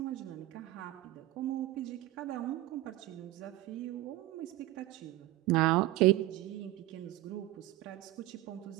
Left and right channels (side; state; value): left; quieter; 17.0 dB